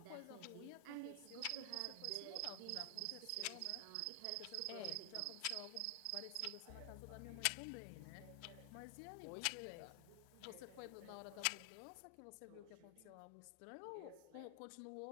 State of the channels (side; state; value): both; different; correlation 0.00